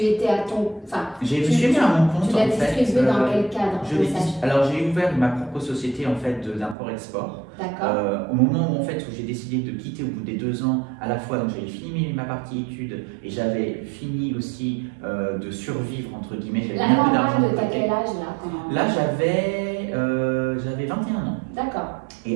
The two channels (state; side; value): drops out; left; at 6.8 s